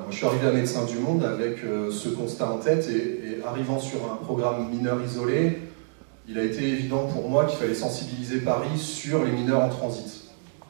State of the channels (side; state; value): left; silent; digital silence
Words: je suis arrivé à Médecins du Monde avec ce constat en tête et arrivant sur un programme mineur isolé, il a été évident pour moi qu'il fallait sensibiliser Paris sur les mineurs en transit.